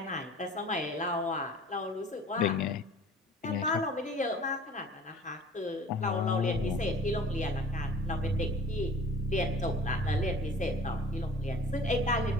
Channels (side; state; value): both; normal; correlation 0.47